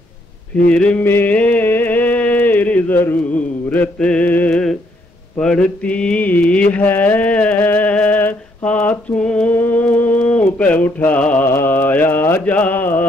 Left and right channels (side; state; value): both; normal; correlation 0.71